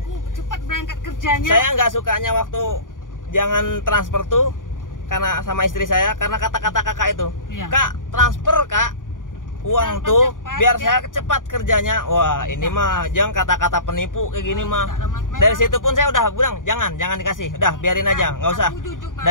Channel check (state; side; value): late; right; 0.88 ms